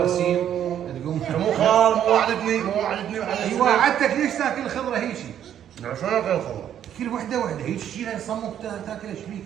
تقوم. مو خال مو وعدتني اي وعدتك، ليش تاكل الخضره هيجي؟ شلون اكل الخضره؟ كل وحده هيك تشيلها صمك تاكل ايش فيك؟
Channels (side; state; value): left; quieter; 10.1 dB